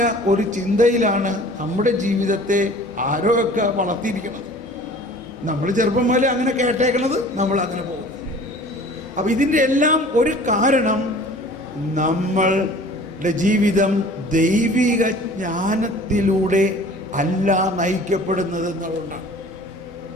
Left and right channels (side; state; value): left; noise; hum, 24 dB below the sound